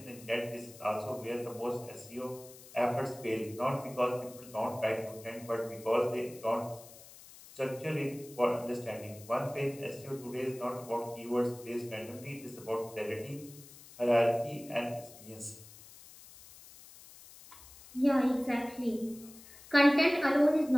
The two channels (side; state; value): left; noise; hiss, 19 dB below the sound